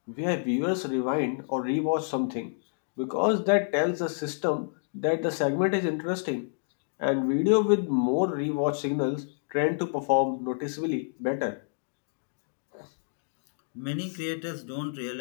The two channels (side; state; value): right; silent; digital silence